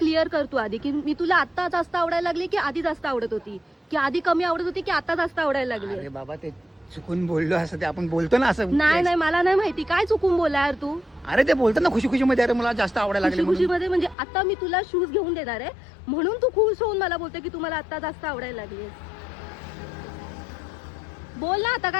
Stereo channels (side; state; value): right; drops out; at 14.2 s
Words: कर तू आधी की मी तुला आता जास्त आवडायला लागली की आधी जास्त आवडत होती की आधी कमी आवडत होती की आता जास्त आवडायला लागली. अरे बाबा ते चुकून बोललो असं ते आपण बोलतो ना असं. नाही नाही मला नाही माहिती काय चुकून बोला यार तू. अरे ते बोलतात ना खुशी खुशी मध्ये अरे मला जास्त आवडायला खुशी लागले खुशी म्हणून. मध्ये म्हणजे आता मी तुला शूज घेऊन देणार आहे म्हणून तू खुश होऊन मला बोलते की तुम्हाला आता जास्त आवडायला लागली. बोल ना आता